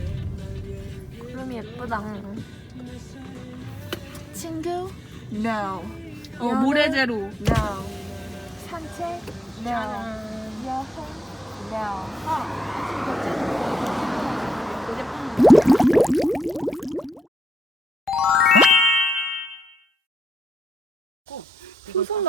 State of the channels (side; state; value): both; normal; correlation 0.80